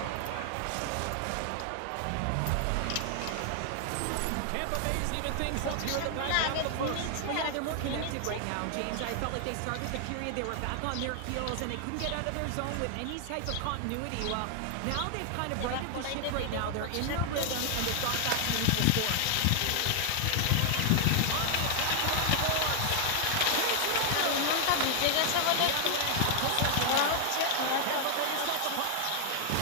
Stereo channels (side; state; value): both; different; correlation 0.00